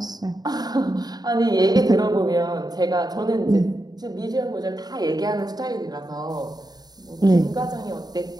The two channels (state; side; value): late; left; 0.19 ms